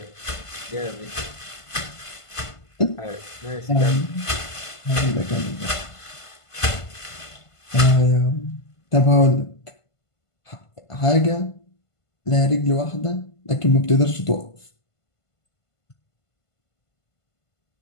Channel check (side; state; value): right; late; 1.5 ms